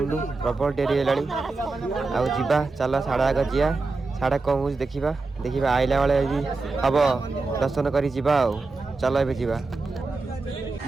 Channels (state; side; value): quieter; left; 3.7 dB